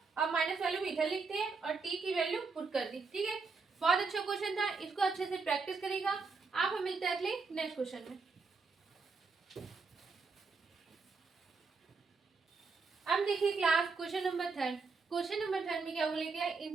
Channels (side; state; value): left; quieter; 4.5 dB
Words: अब माइनस वाले को इधर लिखते हैं और t की वैल्यू पुट कर दी, ठीक है। बहुत अच्छा क्वेश्चन था, इसको अच्छे से प्रैक्टिस करेगा आप। हम मिलते हैं अगले नेक्स्ट क्वेश्चन में। अब देखिए class question number 3। Question number 3 में क्या बोलेगा,